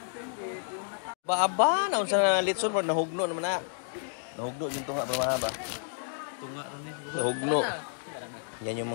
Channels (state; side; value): silent; right; digital silence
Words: Ba, naun sa litson mo, nahugno naman na. Nahugno yung tunga pa mga ba? Nahugno. Yan